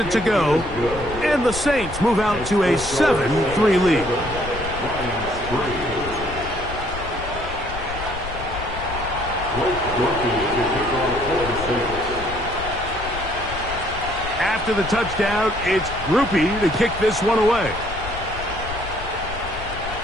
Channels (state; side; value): noise; left; rumble, 10 dB below the sound